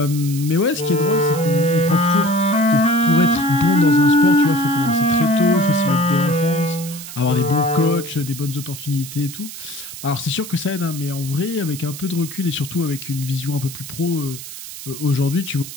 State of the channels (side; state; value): right; noise; hiss, 12 dB below the sound